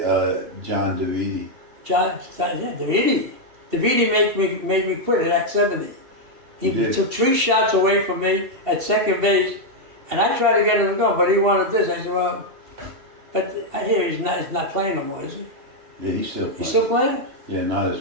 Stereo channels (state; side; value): late; left; 2.7 ms